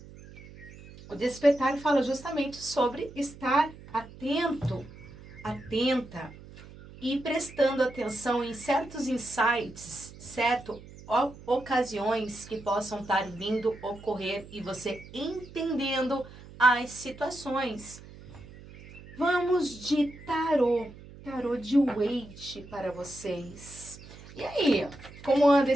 O despertar fala justamente sobre estar atento, atenta e prestando atenção em certos insights, ocasiões que possam estar vindo ocorrer e você entendendo as situações. Vamos de tarô de Waite para vocês. E aí, como anda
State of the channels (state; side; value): noise; right; hum, 18 dB below the sound